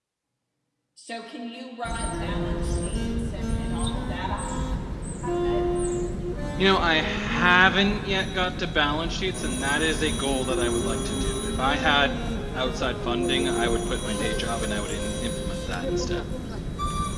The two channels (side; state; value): both; identical; correlation 1.00